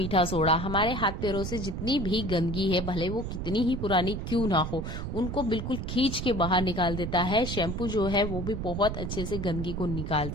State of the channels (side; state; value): right; noise; rumble, 4 dB below the sound